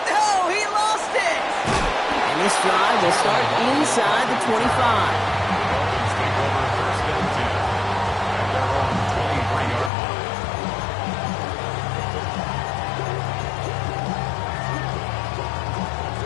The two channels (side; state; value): right; drops out; at 9.9 s